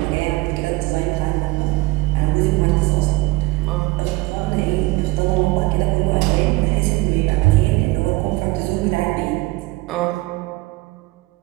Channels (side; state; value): left; quieter; 21.4 dB